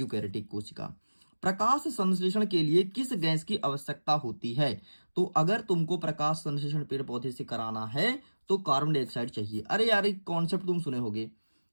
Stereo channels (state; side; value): inverted; both; correlation -1.00